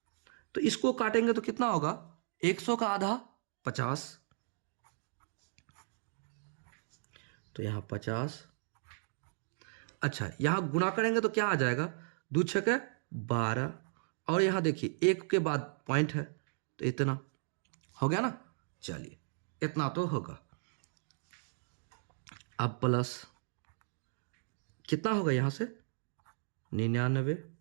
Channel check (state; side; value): silent; left; digital silence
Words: तो इसको काटेंगे तो कितना होगा? 100 का आधा 50, तो यहां 50। अच्छा यहां गुणा करेंगे तो क्या आ जाएगा? 2 छके 12, और यहां देखिए 1 के बाद पॉइंट है तो इतना हो गया ना। चलिए इतना तो होगा। अब प्लस कितना होगा यहां से? 99।